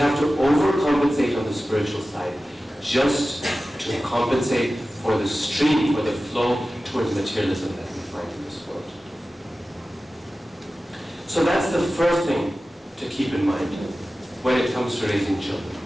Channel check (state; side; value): normal; both; correlation 0.95